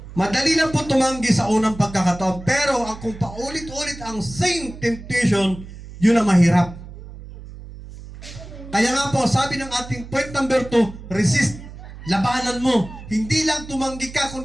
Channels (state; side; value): noise; right; hum, 14 dB below the sound